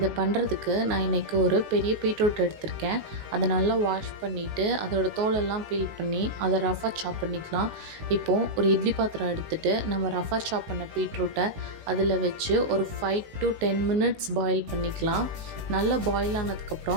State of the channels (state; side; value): late; left; 19 ms